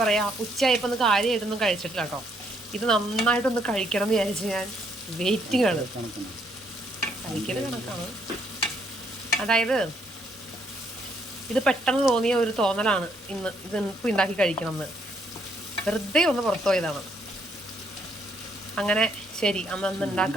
പറയുക, ഉച്ചയായപ്പോൾ ഒന്ന് കാര്യമായിട്ടൊന്നും കഴിച്ചിട്ടില്ല കേട്ടോ. ഇത് നന്നായിട്ടൊന്ന് കഴിക്കണം എന്ന് വിചാരിച്ച് ഞാൻ വെയിറ്റിംഗ് ആണ്. കഴിക്കൽ കണക്കാണ്. അതായത് ഇത് പെട്ടെന്ന് തോന്നിയ ഒരു തോന്നലാണ് ഇത് ഇപ്പോൾ ഉണ്ടാക്കി കഴിക്കണം എന്ന്. വെറുതെ ഒന്ന് പുറത്തു പോയതാണ്. അങ്ങനെ ശരി, അന്ന്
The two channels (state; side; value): normal; both; correlation 0.71